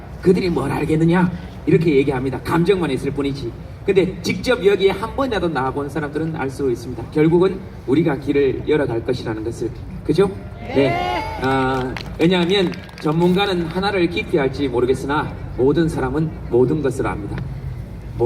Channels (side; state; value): both; identical; correlation 1.00